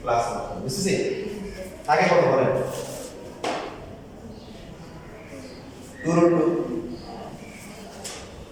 প্লাস বুঝছেন আগে কত বলেন 2√2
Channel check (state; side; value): identical; both; correlation 1.00